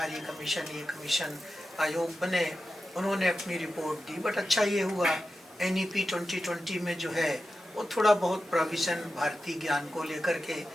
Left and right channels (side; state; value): both; normal; correlation 0.92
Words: कमीशन, ये कमीशन आयोग बने, उन्होंने अपनी रिपोर्ट दी। बट अच्छा ये हुआ NEP 2020 में जो है वो थोड़ा बहुत प्रोविज़न भारतीय ज्ञान को लेकर के,